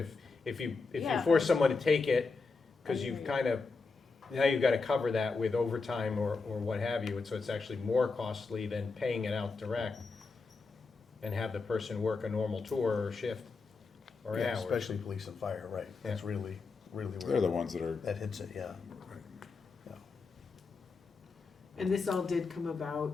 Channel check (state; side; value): quieter; right; 4.3 dB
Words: you Yeah. force someone to take it, because I you've hear you. kind of, now you've got to cover that with overtime or what have you, and so it's actually more costly than paying it out direct and have the person work a normal tour or shift or Yeah, hours. especially police and fire, right. That's really where. They're the ones that are. That hits it, yeah. Yeah. And this all did come